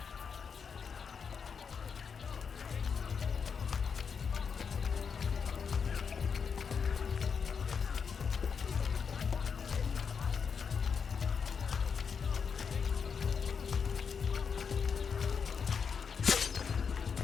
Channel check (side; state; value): right; quieter; 6.1 dB